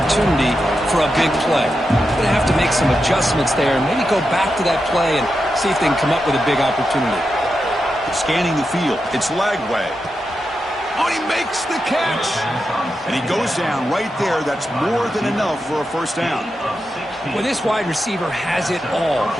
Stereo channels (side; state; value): both; normal; correlation 0.88